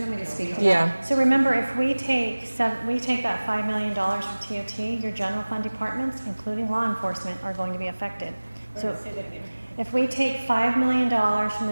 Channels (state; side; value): inverted; both; correlation -1.00